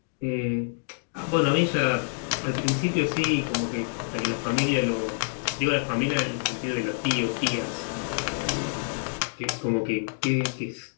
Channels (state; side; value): silent; right; digital silence